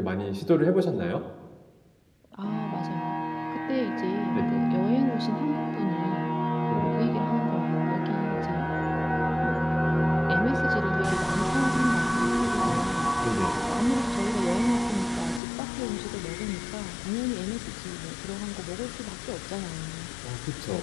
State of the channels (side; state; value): right; drops out; at 15.4 s